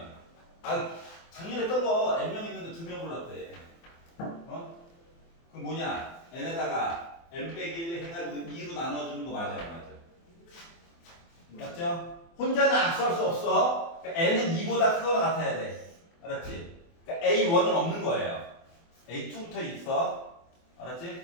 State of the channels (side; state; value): right; late; 24 ms